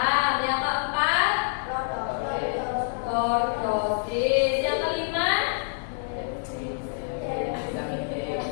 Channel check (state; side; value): silent; right; digital silence